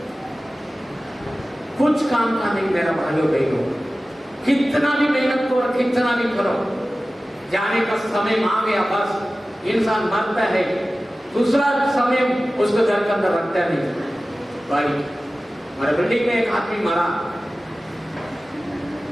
कुछ काम का नहीं। मेरा भाइयों बहनों, कितना भी मेहनत करो, कितना भी करो, जाने का समय आ गया, बस इंसान मरता है, दूसरा समय उसको घर के अंदर रखता नहीं। भाई, हमारे बिल्डिंग में एक आदमी मरा,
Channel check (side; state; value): both; normal; correlation 0.96